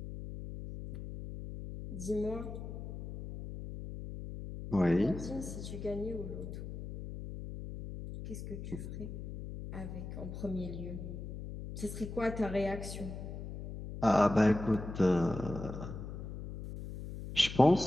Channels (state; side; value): noise; left; hum, 8 dB below the sound